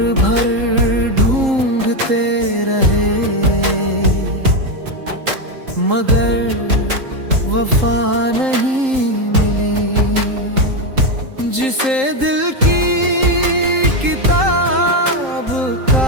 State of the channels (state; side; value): late; left; 3.8 ms